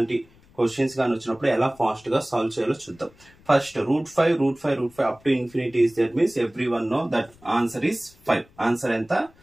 questions gaani vachinappudu ela fast ga solve cheyalo chuddam. First root 5 up to infinity is there means everyone know that answer is 5. Answer enta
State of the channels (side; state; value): left; noise; rumble, 28 dB below the sound